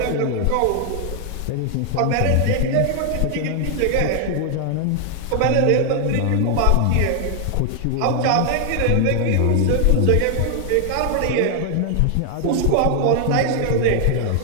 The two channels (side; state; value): both; different; correlation 0.00